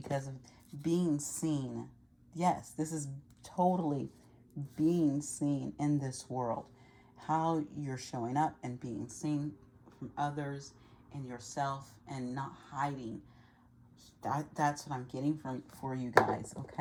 of being seen. Yes, this is totally being seen in this world. How you're showing up and being seen from others and yourself, and not hiding. That's what I'm getting from for you guys,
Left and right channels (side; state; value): both; identical; correlation 1.00